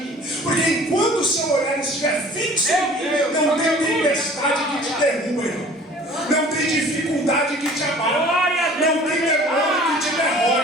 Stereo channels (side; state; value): both; normal; correlation 0.48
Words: Porque enquanto o seu olhar estiver fixo em mim, não tem tempestade que te derruba, irmão. Não tem dificuldade que te abala. Não tem demônio que te